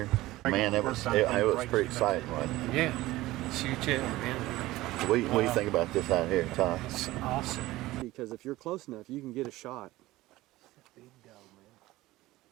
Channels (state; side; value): quieter; left; 17.8 dB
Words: Man, it was pretty exciting, wasn't it? Yeah. Shoot it, man. What do you think about this out here, Todd? It's awesome. Because if you're close enough, you can get a shot. Big dog,